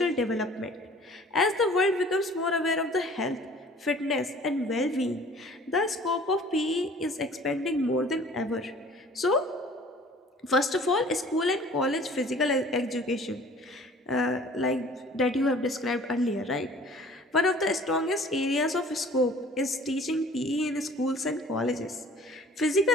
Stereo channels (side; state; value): both; normal; correlation 0.50